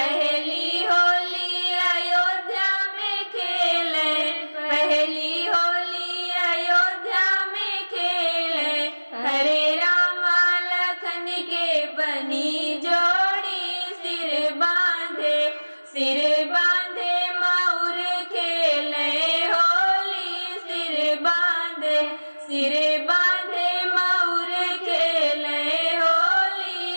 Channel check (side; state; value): both; inverted; correlation -1.00